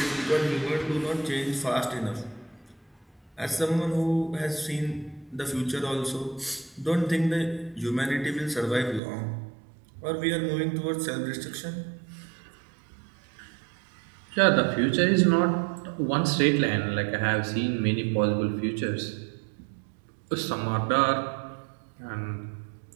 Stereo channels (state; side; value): drops out; left; at 9.0 s